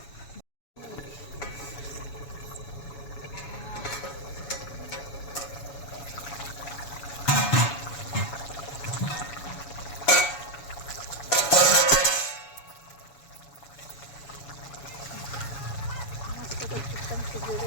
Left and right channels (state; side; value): late; right; 7.1 ms